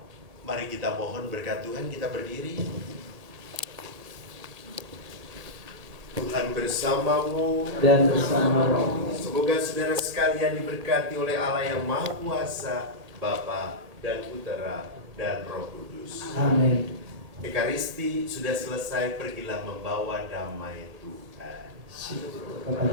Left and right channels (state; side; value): late; left; 1.7 ms